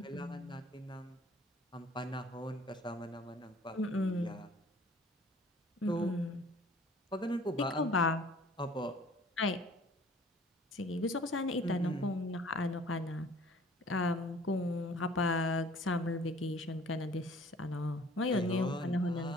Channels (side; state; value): both; normal; correlation 0.52